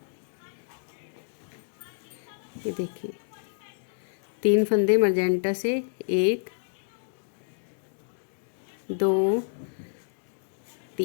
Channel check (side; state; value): right; silent; digital silence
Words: देखिए 3 फंदे मजेंटा से, 1 2